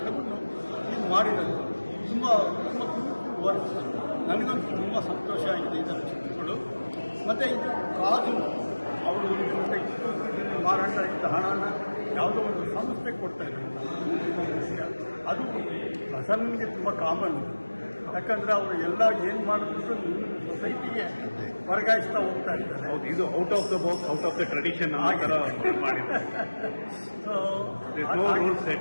ಇದು ಮಾಡಿರೋದು ತುಂಬ ತುಂಬ ವರ್ಕ್. ನನಗಂತೂ ತುಂಬ ಸಂತೋಷ ಆಗಿದೆ ಇದರ ಚಿತ್ರಗಳು. ಮತ್ತು ಇದು ಕಾದು ಅವರು ಮಾರಾಟ ಇದ್ದ ಹಣನ ಯಾವುದೋ ಒಂದು ಸಂಸ್ಥೆ ಕೊಡ್ತಾ ಇದ್ದಾರೆ. ಅದು ಪ್ರಸನ್ನನಿಗೆ ತುಂಬ ಕಾಮನ್. ಯಾಕಂದರೆ ಅವರು ಎಲ್ಲ ಏನು ಮಾಡಿದ್ರು ಸೊಸೈಟಿಗೆ ವರ್ಗಾಯಿಸ್ತಾ ಹೋಗ್ತಾ ಇದ್ದಾರೆ. ಹೌದು, ಇದು out of the box, out of the tradition ಮಾಡಿದ್ದಾರೆ.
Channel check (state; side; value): inverted; both; correlation -1.00